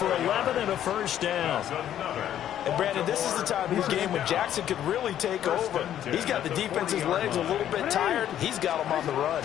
11 and a first down. And Brandon, this is the time of the game when Jackson could really take over. He's got the defense's legs a little bit tired. He's got them on the run.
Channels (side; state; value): right; quieter; 11.0 dB